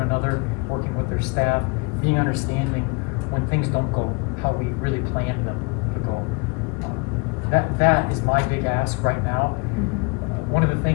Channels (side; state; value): right; quieter; 30.7 dB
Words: another, working with their staff, being understanding when things don't go how we really planned them to go. That is my big ask right now. One of the